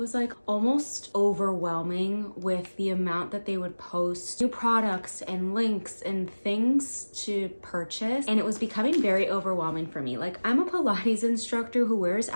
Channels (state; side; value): inverted; both; correlation -1.00